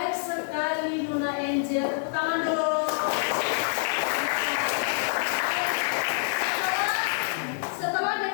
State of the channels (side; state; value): right; silent; digital silence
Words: sekali Luna Angel. Tepuk tangan dulu. Setelah